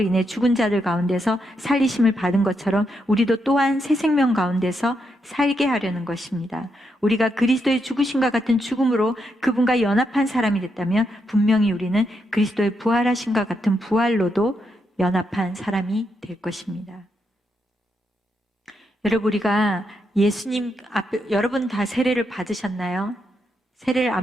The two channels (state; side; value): normal; both; correlation 0.81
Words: 인해 죽은 자들 가운데서 살리심을 받은 것처럼 우리도 또한 새 생명 가운데서 살게 하려는 것입니다. 우리가 그리스도의 죽으심과 같은 죽음으로 그분과 연합한 사람이 됐다면 분명히 우리는 그리스도의 부활하심과 같은 부활로도 연합한 사람이 될 것입니다. 여러분, 우리가 예수님 앞에, 여러분 다 세례를 받으셨나요? 세례를